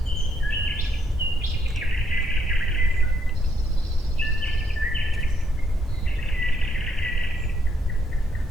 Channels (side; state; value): both; normal; correlation 0.75